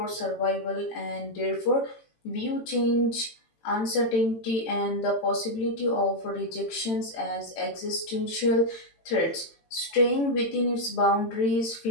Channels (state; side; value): late; right; 18 ms